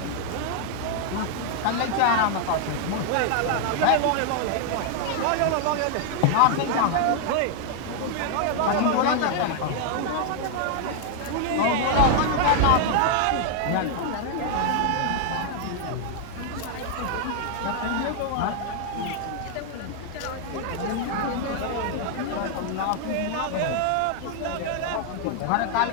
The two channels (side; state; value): both; different; correlation 0.00